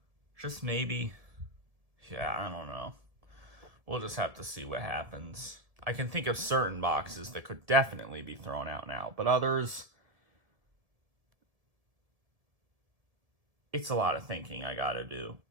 Just maybe. Yeah, I don't know. we'll just have to see what happens. I can think of certain boxes that could definitely be thrown out now, but others, it's a lot of thinking I gotta do.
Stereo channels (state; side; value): late; left; 1.7 ms